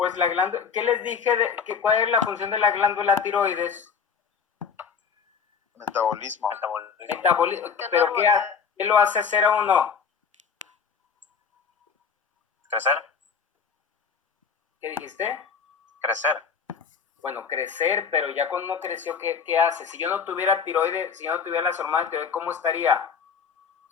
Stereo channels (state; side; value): quieter; right; 6.2 dB